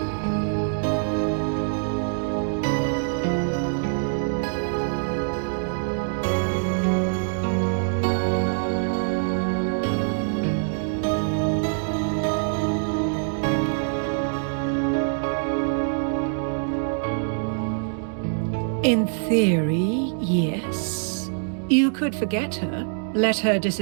In theory, yes. You could forget her, let her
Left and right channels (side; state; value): left; silent; digital silence